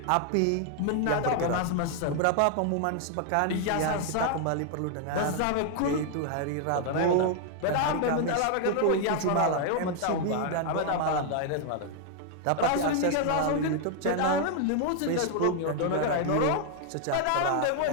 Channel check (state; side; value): different; both; correlation 0.00